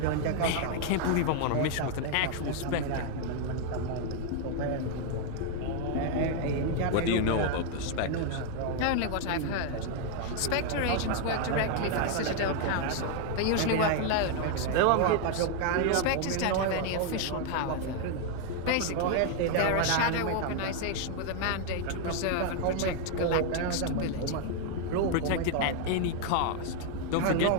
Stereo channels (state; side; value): different; both; correlation 0.00